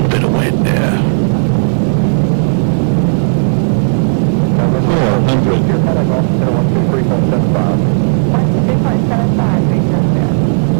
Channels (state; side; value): silent; left; digital silence